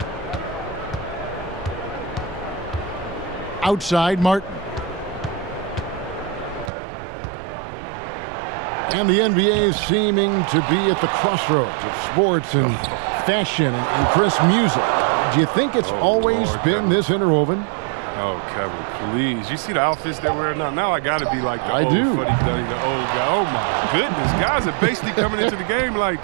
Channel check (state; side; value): drops out; left; at 6.7 s